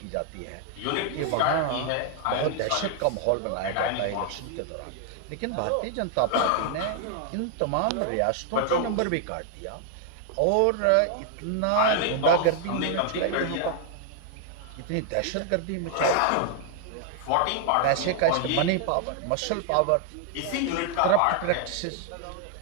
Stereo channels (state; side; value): different; both; correlation 0.00